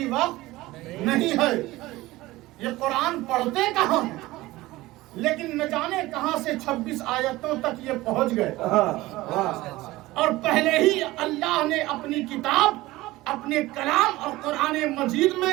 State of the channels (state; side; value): quieter; left; 18.6 dB